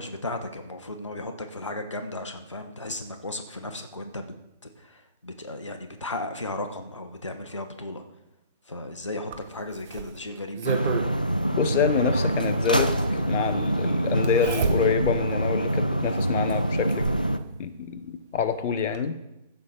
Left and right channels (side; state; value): both; inverted; correlation -0.51